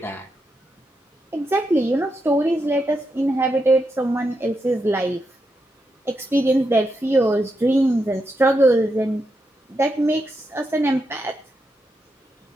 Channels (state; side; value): normal; both; correlation 0.84